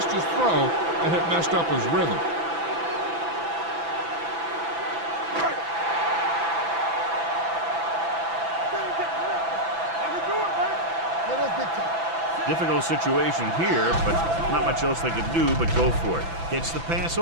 his throw, and it messed up his rhythm. Difficult situation here, but not much else they could do but go for it. Gets the pass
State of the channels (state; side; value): late; left; 6.0 ms